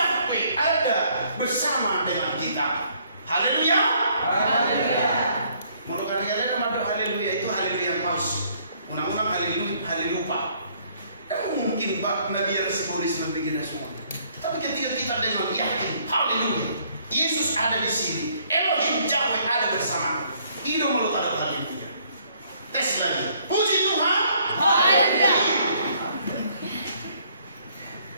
ada bersama dengan kita. Haleluya. Haleluya. Menurut kalian ada mungkin Nabi Yesus begini semua. Tapi ketika kita dengan yakin, haleluya, Yesus ada di sini, Elohim Yahweh ada bersama. Itu malu ada haleluya. Tes lagi. Puji Tuhan. Haleluya.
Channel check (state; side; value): inverted; both; correlation -0.65